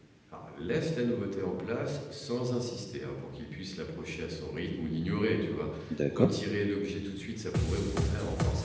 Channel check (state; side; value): identical; both; correlation 1.00